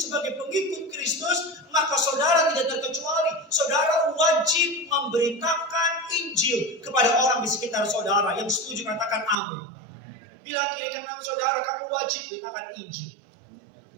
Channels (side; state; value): left; drops out; at 9.3 s